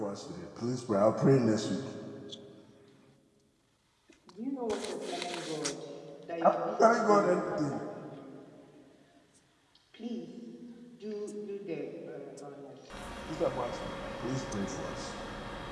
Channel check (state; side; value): identical; both; correlation 1.00